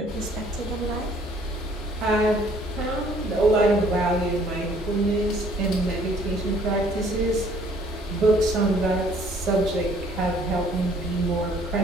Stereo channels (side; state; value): both; normal; correlation 0.59